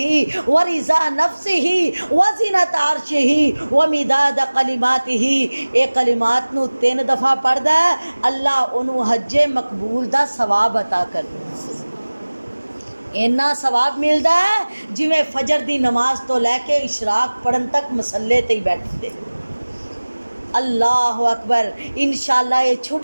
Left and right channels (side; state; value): both; inverted; correlation -1.00